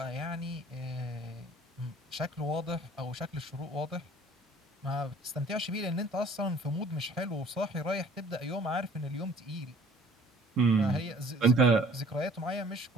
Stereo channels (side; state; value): both; normal; correlation 0.52